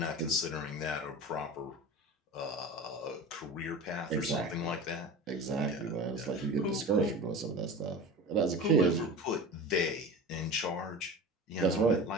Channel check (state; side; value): normal; both; correlation 0.32